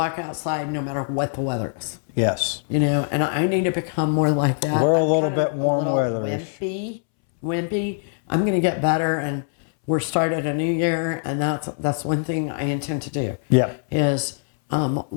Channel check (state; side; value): silent; right; 64 dB below the other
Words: outside no matter what the weather is. Yes. And I need to become more like that. We're a I'm little kind of bit warm a little weatherish. Wimpy. I'm going to get better, and we're started a new year, and that's one thing I intend to do. Yeah. Is